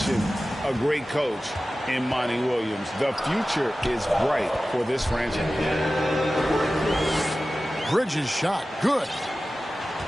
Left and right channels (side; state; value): both; normal; correlation 0.95